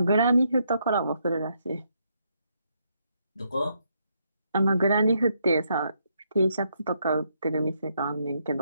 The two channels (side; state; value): both; inverted; correlation -0.76